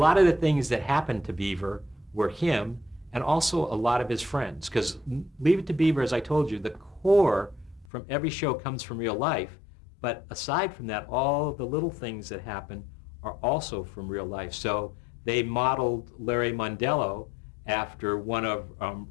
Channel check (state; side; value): drops out; right; at 7.9 s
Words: of the things that happened to Beaver were him, and also a lot of his friends. Because Leave It to Beaver, as I told you, the core from every show comes from real life. But aside from that, all of the little things that happen are also from real life. So they modeled Larry Mondello after one of